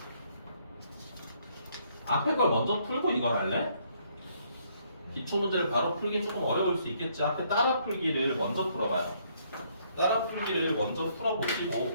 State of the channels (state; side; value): inverted; both; correlation -0.68